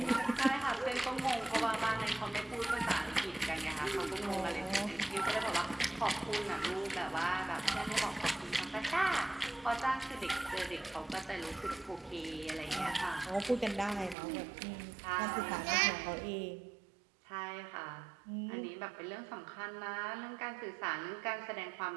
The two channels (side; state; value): left; drops out; at 14.2 s